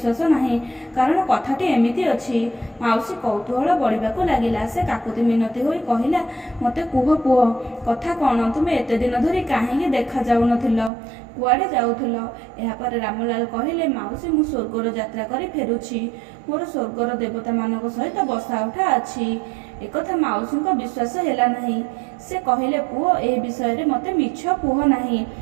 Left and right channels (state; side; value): drops out; left; at 10.9 s